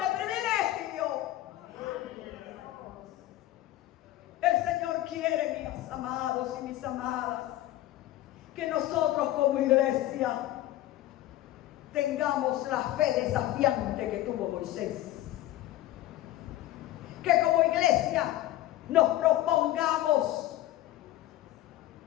privilegio. El Señor quiere, mis amados y mis amadas, que nosotros como iglesia tengamos la fe desafiante que tuvo Moisés. Que como iglesia nos propongamos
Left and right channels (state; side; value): quieter; right; 14.8 dB